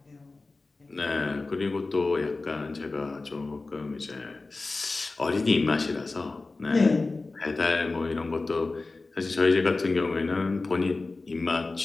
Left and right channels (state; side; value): quieter; right; 3.5 dB